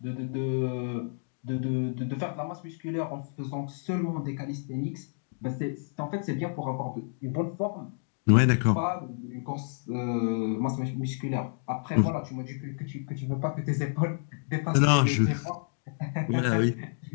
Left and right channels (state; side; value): silent; right; digital silence